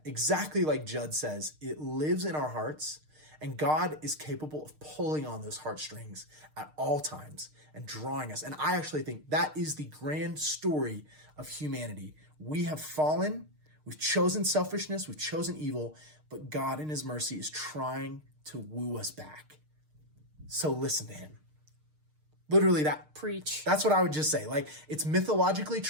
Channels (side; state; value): left; late; 6.6 ms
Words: exactly like Judd says, it lives in our hearts. And God is capable of pulling on those heartstrings at all times and drawing us. And I actually think that is the grand story of humanity. We have fallen, we've chosen selfishness, we've chosen evil, but God in his mercy is trying to woo us back. So listen to him. Literally that. Preach. That's what I would just say. It's mythologically